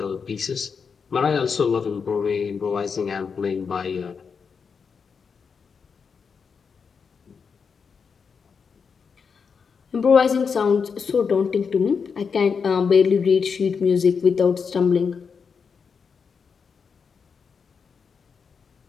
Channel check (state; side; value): quieter; right; 5.9 dB